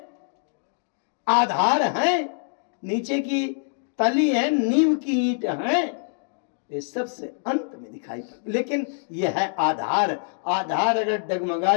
आधार है, नीचे की तली है, नींव की ईंट है, ये सबसे अंत में दिखाई पड़े। लेकिन यह है आधार। आधार अगर डगमगा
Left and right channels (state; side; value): silent; right; 62 dB below the other